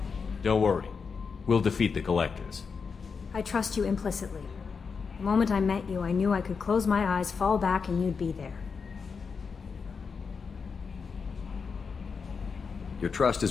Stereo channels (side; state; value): right; quieter; 5.5 dB